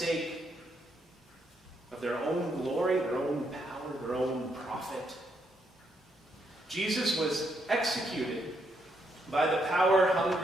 of their own glory, their own power, their own profit. Jesus was executed by the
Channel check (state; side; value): normal; both; correlation 0.76